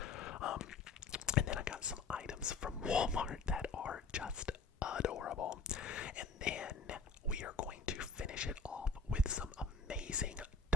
And then I got some items from Walmart that are just adorable. And then we are going to finish it off with some amazing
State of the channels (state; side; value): quieter; right; 4.3 dB